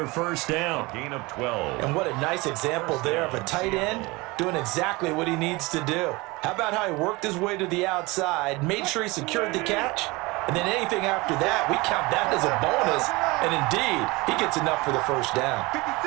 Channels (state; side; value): quieter; left; 23.6 dB